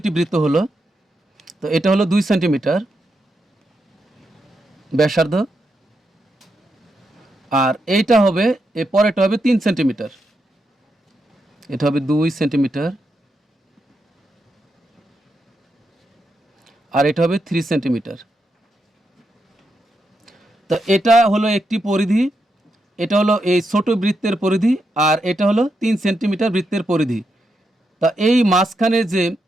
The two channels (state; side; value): normal; both; correlation 0.84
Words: বৃত্ত হলো। তো এটা হলো 2 সেন্টিমিটার ব্যাসার্ধ, আর এইটা হবে, এর পরেরটা হবে 3 সেন্টিমিটার। এটা হবে 2 সেন্টিমিটার আর এটা হবে 3 সেন্টিমিটার। তো এটা হলো একটি পরিধি, এটা হলো এই ছোট বৃত্তের পরিধি, আর এটা হলো 3 সেন্টিমিটার বৃত্তের পরিধি। তা এই মাঝখানে যে